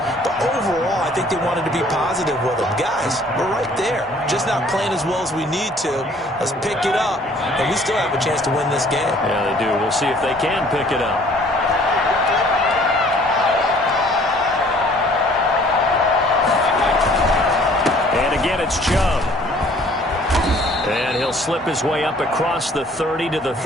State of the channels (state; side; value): normal; both; correlation 0.56